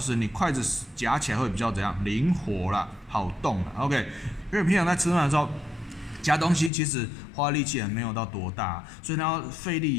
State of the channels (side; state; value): right; drops out; at 6.7 s